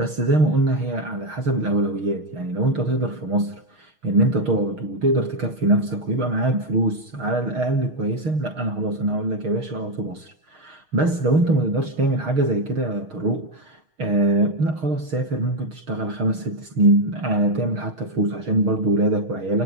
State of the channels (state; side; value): late; left; 6.4 ms